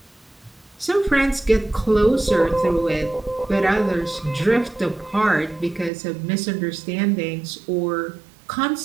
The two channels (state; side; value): drops out; left; at 5.9 s